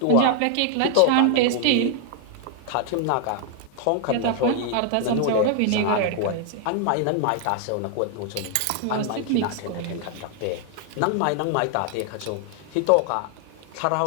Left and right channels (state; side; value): different; both; correlation 0.00